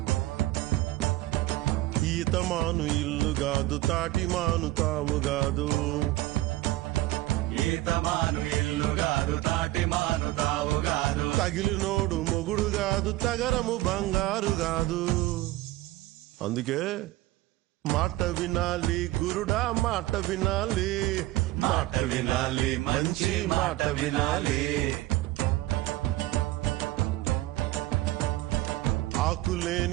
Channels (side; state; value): left; quieter; 17.3 dB